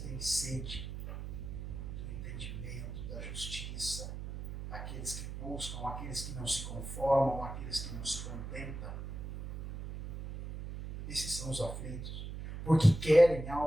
têm sede do entendimento, da justiça, aqueles que buscam, aqueles que não se conformam, aqueles que não se contentam. Esses são os aflitos, porque querem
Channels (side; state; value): right; noise; hum, 7 dB below the sound